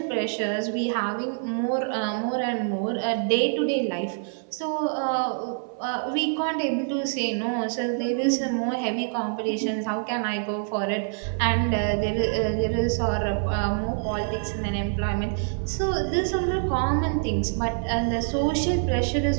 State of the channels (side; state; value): left; silent; 55 dB below the other